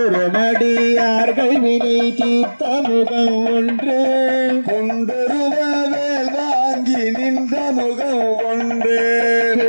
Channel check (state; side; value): inverted; both; correlation -1.00